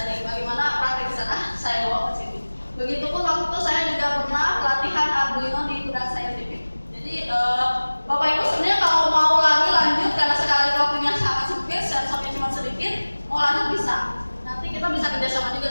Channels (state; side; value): inverted; both; correlation -1.00